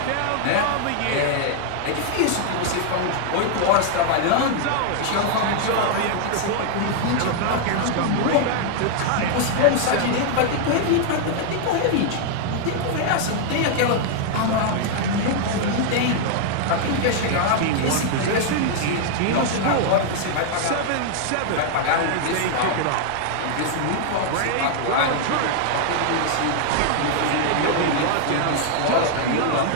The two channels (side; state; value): both; different; correlation 0.00